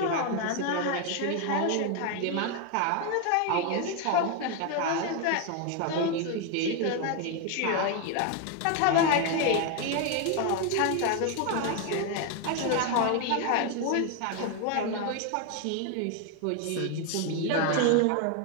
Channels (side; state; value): both; different; correlation 0.01